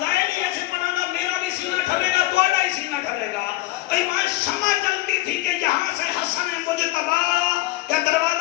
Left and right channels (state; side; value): quieter; right; 18.0 dB